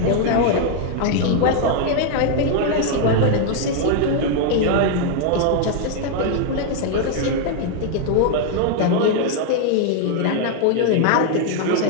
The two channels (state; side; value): different; both; correlation 0.00